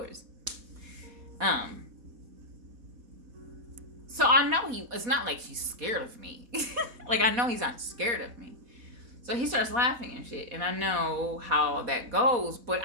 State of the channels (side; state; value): left; late; 4.2 ms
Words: So I know it's not like he's scared of me. Like, I know he's not scared of me. So he starts laughing and shit, and I know how that goes, but